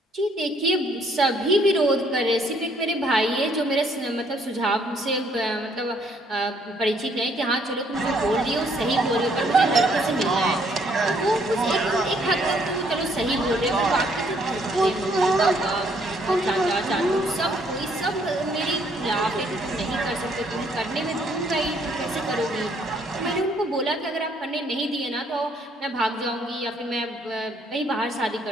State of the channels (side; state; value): both; normal; correlation 0.66